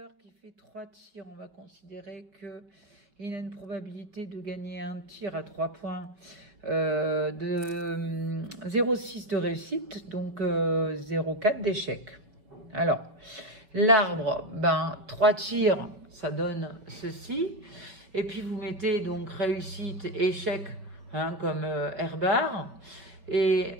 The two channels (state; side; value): late; left; 5.4 ms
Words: qui fait 3 tirs. On va considérer qu'il a une probabilité de gagner un tir à 3 points de 0,6 de réussite, donc 0,4 d'échec. Alors, l'arbre, 3 tirs, ça donne ceci. Et puis vous mettez donc réussite, échec, comme R bar. Et